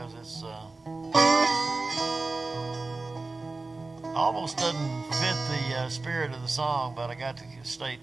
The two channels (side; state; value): left; quieter; 3.5 dB